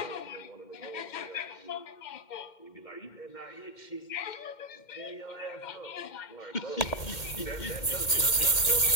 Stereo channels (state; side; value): late; right; 2.1 ms